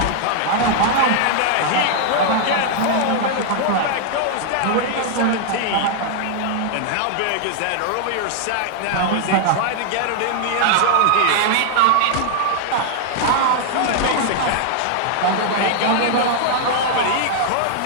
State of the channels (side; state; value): both; different; correlation 0.00